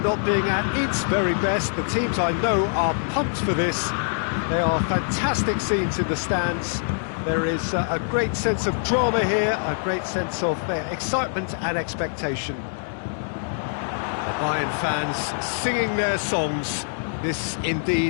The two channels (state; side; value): silent; right; digital silence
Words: being at its very best. The teams I know are pumped for this. There are fantastic scenes in the stands. There is a great sense of drama here, a great sense of excitement and expectation. The Bayern fans singing their songs. This